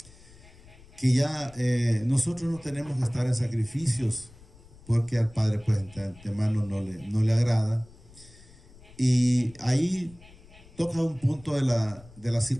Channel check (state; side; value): noise; left; rumble, 23 dB below the sound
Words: que ya nosotros no tenemos que estar en sacrificios, porque al Padre pues de antemano no le agrada. Y ahí toca un punto de la